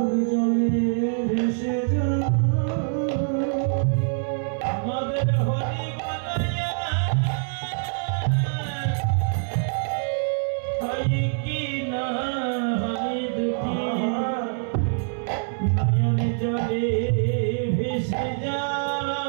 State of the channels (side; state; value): left; silent; 62 dB below the other